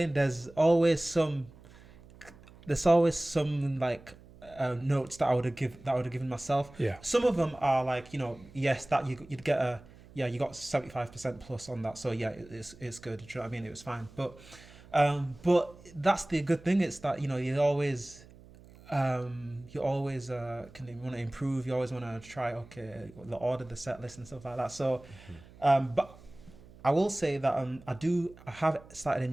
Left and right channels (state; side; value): noise; right; hum, 22 dB below the sound